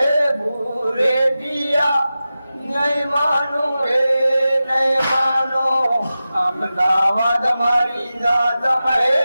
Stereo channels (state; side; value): inverted; both; correlation -0.94